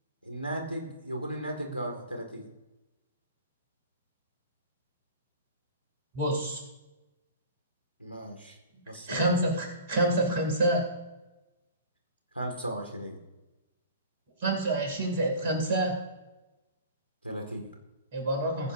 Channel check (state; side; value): inverted; both; correlation -0.39